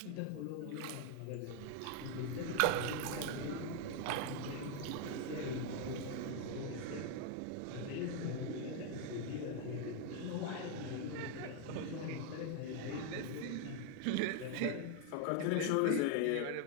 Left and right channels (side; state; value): both; different; correlation 0.01